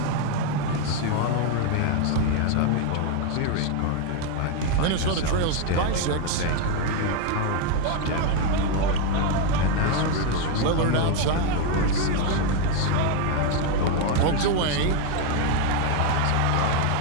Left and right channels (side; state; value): both; different; correlation 0.01